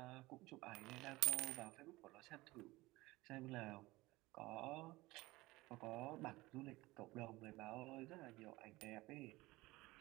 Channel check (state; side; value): quieter; left; 20.2 dB